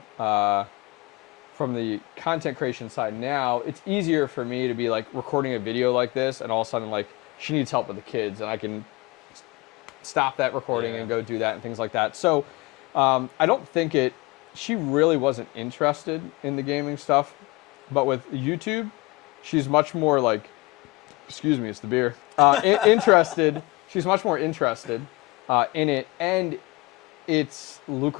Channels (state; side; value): quieter; right; 22.4 dB